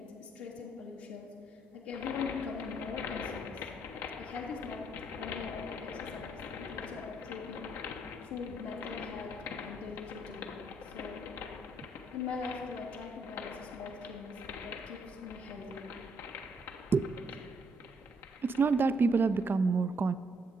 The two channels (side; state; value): both; normal; correlation 0.72